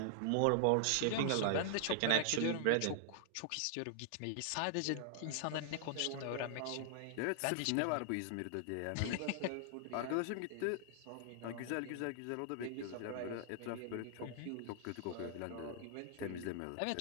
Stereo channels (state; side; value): different; both; correlation -0.01